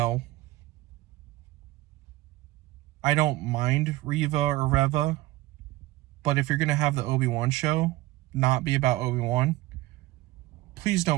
I don't mind Reva or Reva, but if you're going to have the Obi-Wan show not be about Obi-Wan, please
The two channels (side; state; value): left; quieter; 17.9 dB